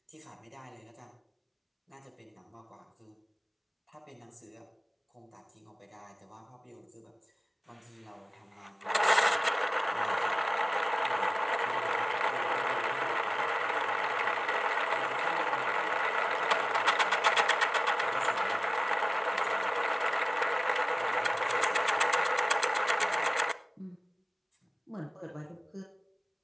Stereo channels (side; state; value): both; identical; correlation 1.00